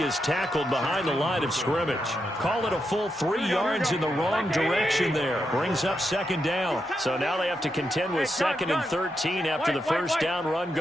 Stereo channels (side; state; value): both; normal; correlation 0.84